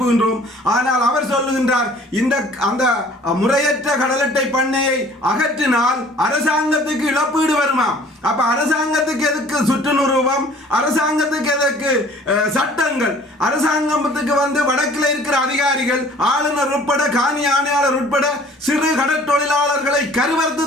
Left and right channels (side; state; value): both; normal; correlation 0.52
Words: ஆனால் அவர் சொல்லுகின்றார், அந்த முறையற்ற கடல் அட்டை பண்ணையை அகற்றினால் அரசாங்கத்துக்கு இழப்பீடு வருமா? அப்ப அரசாங்கத்துக்கு எதுக்கு சுற்று நிரூபம்? அரசாங்கத்துக்கு எதற்கு சட்டங்கள்? அரசாங்கத்துக்கு வடக்கில் இருக்கிற அதிகாரிகள், ஆளுநர் உட்பட காணி ஆணையாளர் உட்பட சிறு கடற்தொழிலாளர்களை